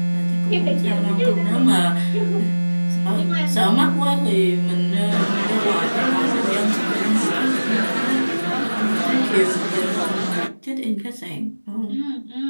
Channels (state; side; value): inverted; both; correlation -1.00